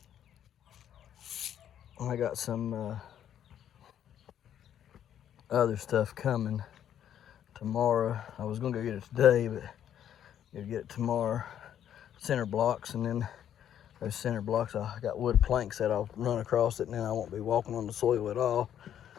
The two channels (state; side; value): quieter; right; 10.1 dB